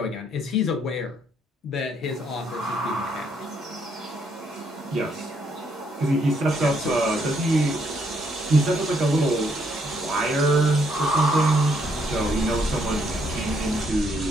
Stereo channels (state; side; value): normal; both; correlation 0.72